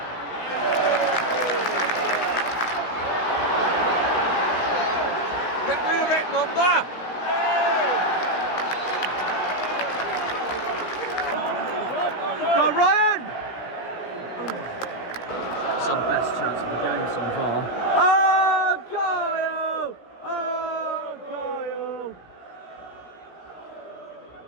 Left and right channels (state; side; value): late; right; 17 ms